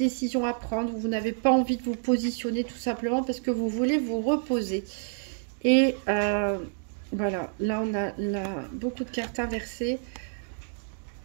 à prendre où vous n'avez pas envie de vous positionner tout simplement parce que vous voulez vous reposer. Et voilà, là on a beaucoup de cartes inversées.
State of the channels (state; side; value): silent; left; digital silence